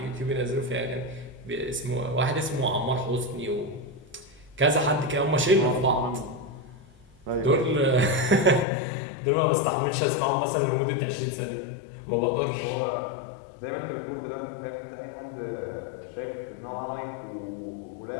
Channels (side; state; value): right; drops out; at 8.7 s